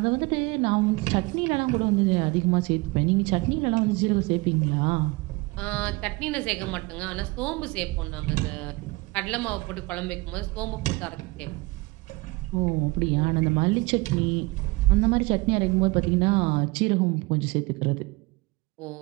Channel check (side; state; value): left; quieter; 24.4 dB